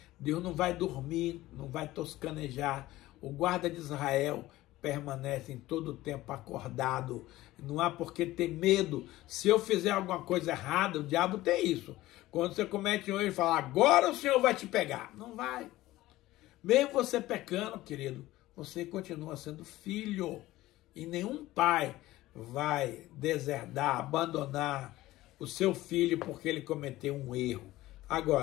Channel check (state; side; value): quieter; right; 16.9 dB